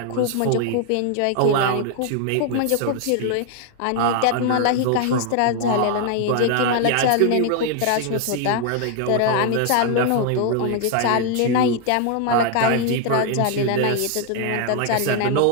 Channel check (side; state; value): both; different; correlation 0.00